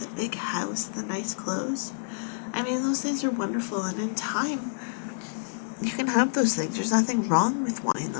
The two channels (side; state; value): right; silent; digital silence